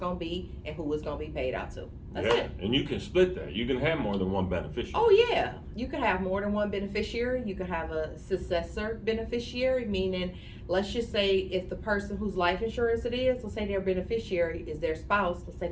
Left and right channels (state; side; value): identical; both; correlation 1.00